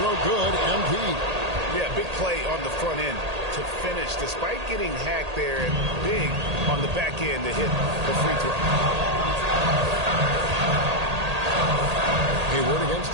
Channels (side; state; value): left; late; 1.8 ms